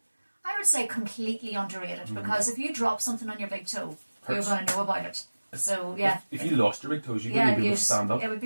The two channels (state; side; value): inverted; both; correlation -1.00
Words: I would say completely underrated, because if you drop something on your big toe, Hurts. you're going to know about it. So yeah, If you lost your big toes, you wouldn't be able to stand up. It would